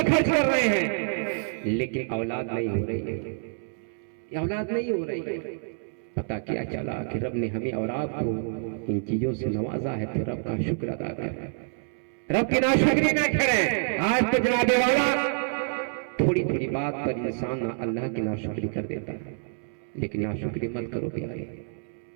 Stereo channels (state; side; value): silent; left; 60 dB below the other